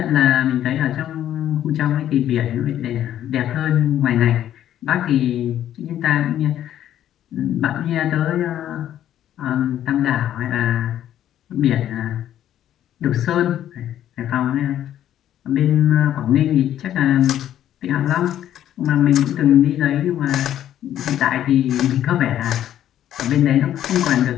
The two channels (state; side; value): quieter; right; 11.4 dB